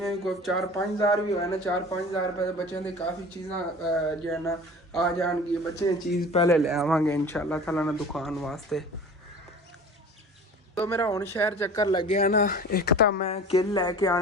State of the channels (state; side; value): normal; both; correlation 0.40